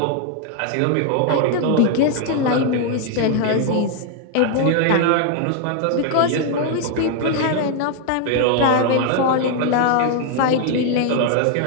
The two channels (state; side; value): different; both; correlation 0.00